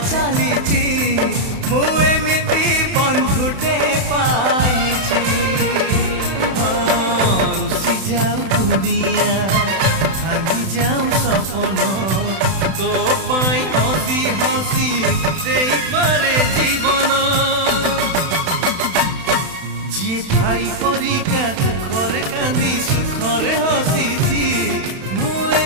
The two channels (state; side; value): late; left; 31 ms